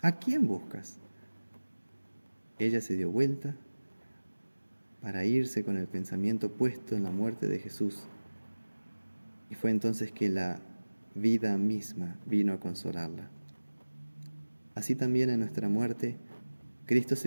¿A quién buscas?». Ella se dio vuelta para irse con el pensamiento puesto en la muerte de Jesús. Y fue entonces que la vida misma vino a consolarla. Así también en nuestra muerte, Cristo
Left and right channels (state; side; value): inverted; both; correlation -1.00